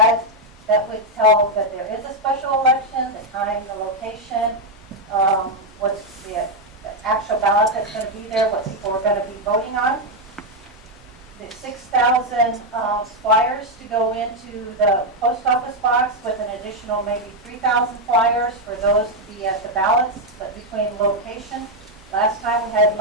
that would tell that there is a special election, the time, the location, what's the actual ballot that's going to be there, what people are going to be voting on. The 6,000 flyers to go into the post office box, with an additional maybe 3,000 flyers for those to be at the ballots, but between location. Last time we had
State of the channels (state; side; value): normal; both; correlation 0.02